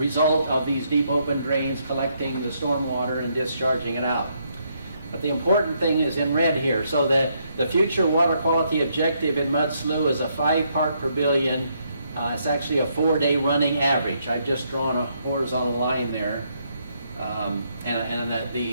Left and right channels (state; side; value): inverted; both; correlation -0.74